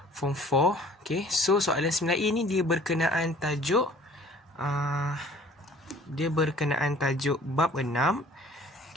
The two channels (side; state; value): both; normal; correlation 0.52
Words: Form 4. So, soalan 9A ni dia berkenaan tajuk bab 6